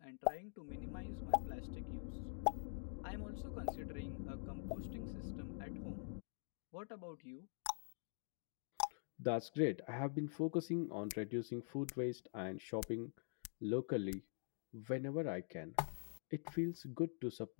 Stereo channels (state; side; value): silent; right; digital silence